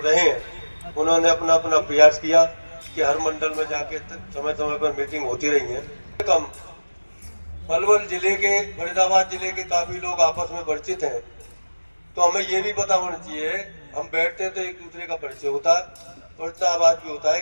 हैं, उन्होंने अपना अपना प्रयास किया कि हर मंडल में जाके समय समय पर मीटिंग होती रही है। कम पलवल जिले के, फरीदाबाद जिले के काफी लोग आपस में परिचित हैं, तो हमें ये भी पता होना चाहिए, हम बैठते हैं तो एक दूसरे का परिचय होता है और इतना आवाज भी होता है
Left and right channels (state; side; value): inverted; both; correlation -1.00